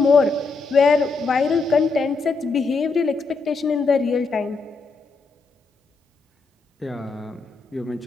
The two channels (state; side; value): quieter; right; 4.1 dB